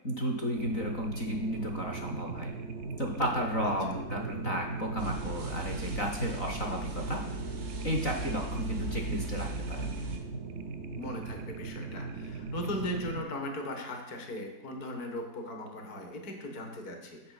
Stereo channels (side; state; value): right; late; 4.0 ms